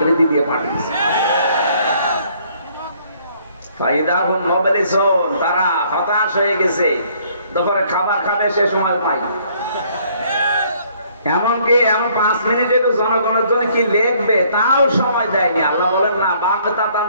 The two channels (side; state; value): both; inverted; correlation -0.63